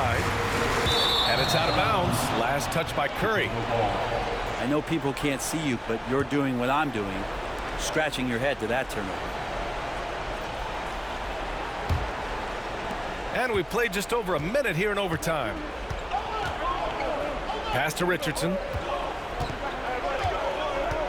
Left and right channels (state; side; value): identical; both; correlation 1.00